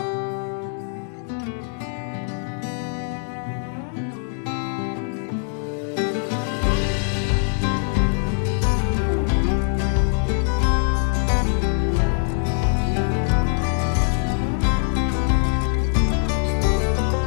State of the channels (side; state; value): right; silent; 57 dB below the other